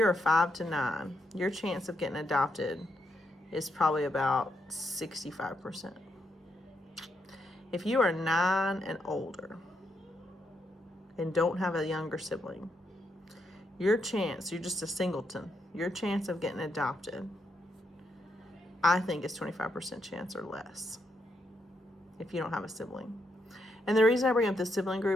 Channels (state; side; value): normal; both; correlation 0.80